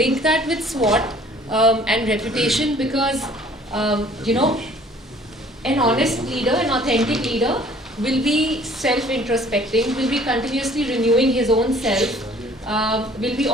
that with SWOT and reputation, because an honest leader, an authentic leader will be self-introspecting, will be continuously renewing his own self, will be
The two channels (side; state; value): both; normal; correlation 0.54